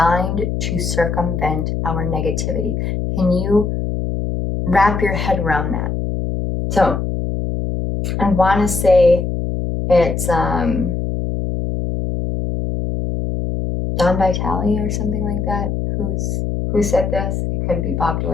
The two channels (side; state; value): left; noise; hum, 2 dB below the sound